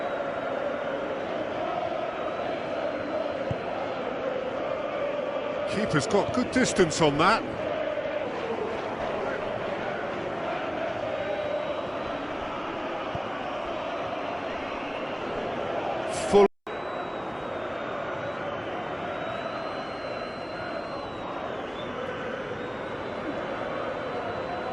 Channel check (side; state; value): both; identical; correlation 1.00